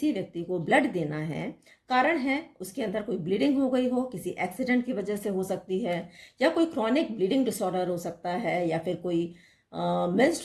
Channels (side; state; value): both; identical; correlation 1.00